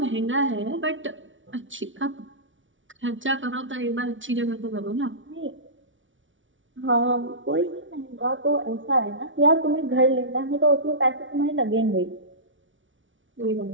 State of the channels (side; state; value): left; late; 0.56 ms